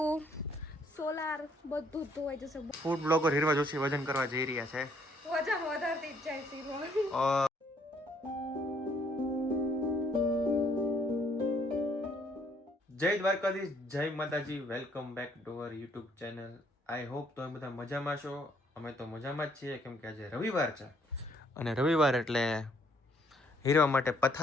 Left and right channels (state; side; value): normal; both; correlation 0.66